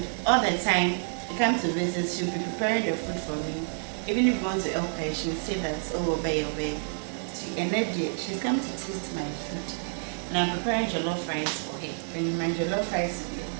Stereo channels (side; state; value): left; silent; digital silence